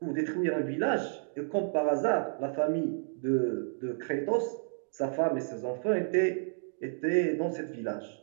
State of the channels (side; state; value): left; silent; digital silence